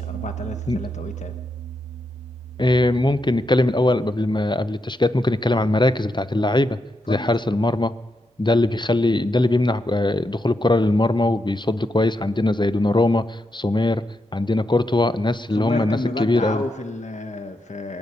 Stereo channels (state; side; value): normal; both; correlation 0.83